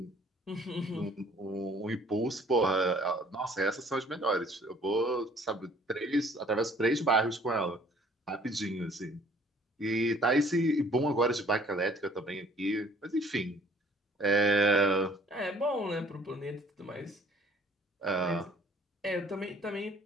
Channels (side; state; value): both; normal; correlation 0.56